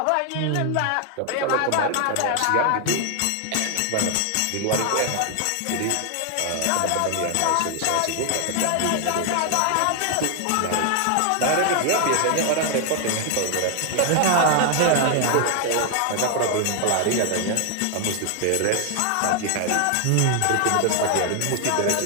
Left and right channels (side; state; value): both; different; correlation 0.00